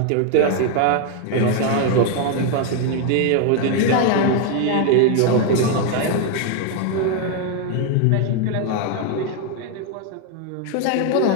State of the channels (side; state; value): both; different; correlation 0.01